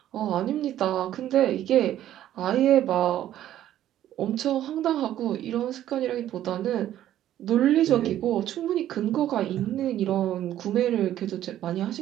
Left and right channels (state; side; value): quieter; left; 12.2 dB